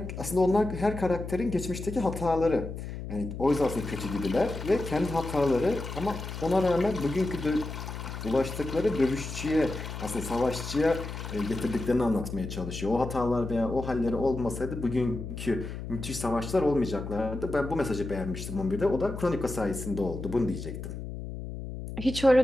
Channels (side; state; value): left; noise; hum, 8 dB below the sound